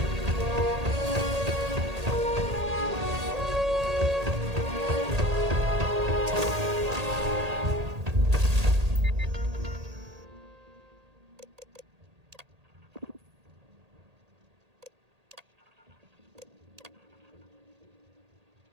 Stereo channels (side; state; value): left; late; 1.8 ms